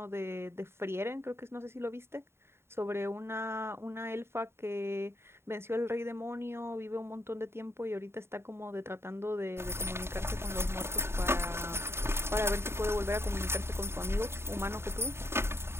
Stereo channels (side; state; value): left; late; 0.12 ms